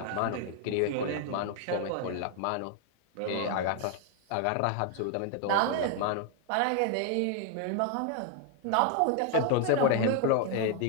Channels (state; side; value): different; both; correlation 0.00